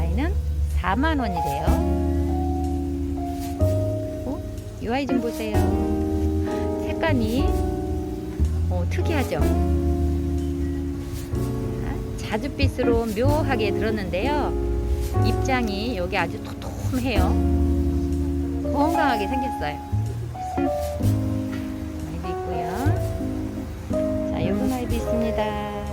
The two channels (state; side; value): identical; both; correlation 1.00